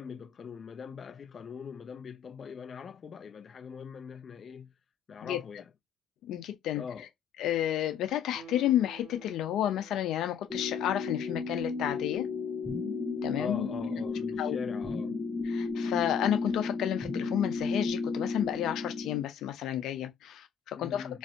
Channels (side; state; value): right; quieter; 7.8 dB